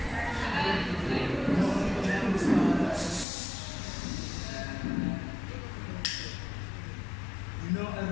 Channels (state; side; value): drops out; right; at 3.2 s